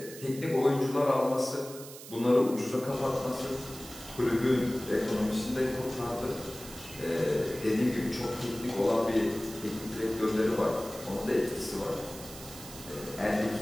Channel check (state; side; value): noise; right; hiss, 14 dB below the sound